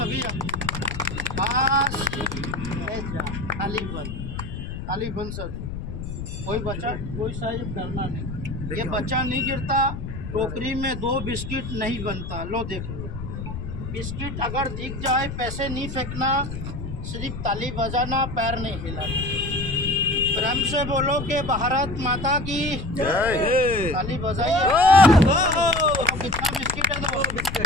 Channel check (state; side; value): noise; left; rumble, 7 dB below the sound